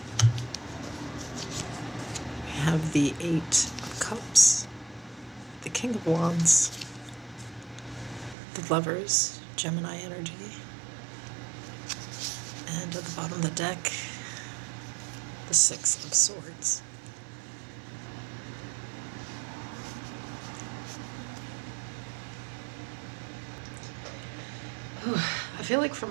Have the Eight of Cups, the King of Wands, the Lovers, Gemini energy, and at the bottom of the deck, the Six of Swords. I feel like for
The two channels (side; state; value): left; drops out; at 8.3 s